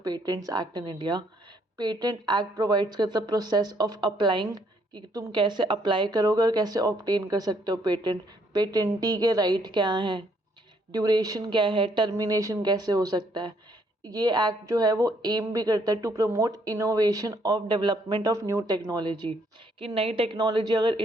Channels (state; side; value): normal; both; correlation 0.68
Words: patents act in India. Patent act provides करता है प्रोसेस ऑफ अप्लाइंग, कि तुम कैसे अप्लाई करोगे और कैसे ऑब्टेन कर सकते हो पेटेंट। पेटेंटी के राइट क्या हैं, ड्यूरेशन क्या है, टर्मिनेशन कैसे हो सकता है। ये एक्ट जो है वो एम भी करता है to promote innovation of development of new technology, कि नई टेक्नोलॉजी अगर